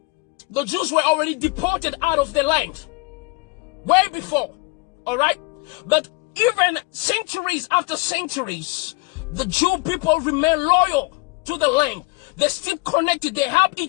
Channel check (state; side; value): quieter; right; 26.0 dB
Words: the Jews were already deported out of the land. Way before, all right? But even centuries after centuries, the Jew people remain loyal to the land. They're still connected. They help